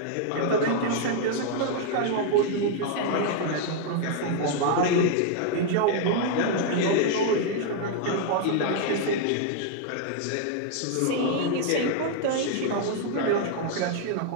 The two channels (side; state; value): both; different; correlation 0.00